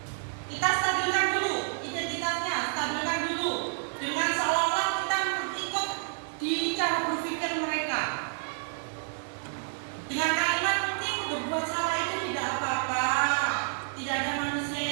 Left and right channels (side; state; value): left; silent; 58 dB below the other